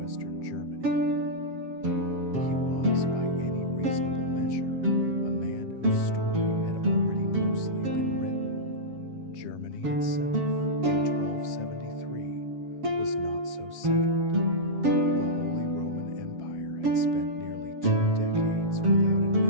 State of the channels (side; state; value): left; late; 7.3 ms